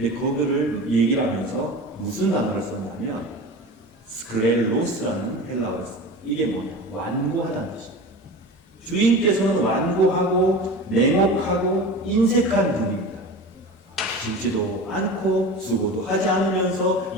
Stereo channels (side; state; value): both; normal; correlation 0.32